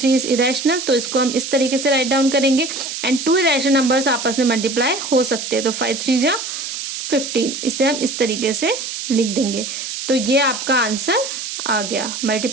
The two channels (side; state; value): right; noise; hiss, 6 dB below the sound